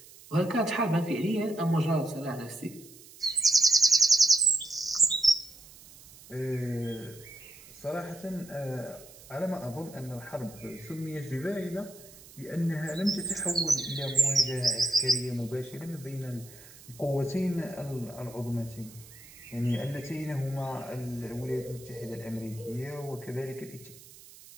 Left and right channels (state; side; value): noise; right; hiss, 20 dB below the sound